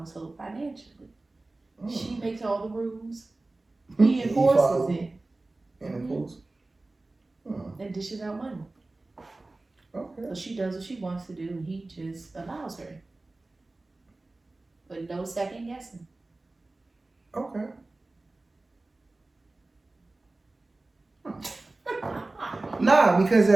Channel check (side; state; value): left; quieter; 3.1 dB